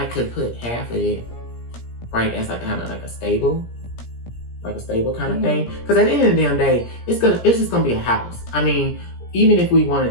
could put half of it right as like kind of like a stable kind of thing. Because at the end of the damn day, it's just gonna be a house. I mean, even if we wanted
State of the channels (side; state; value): right; late; 17 ms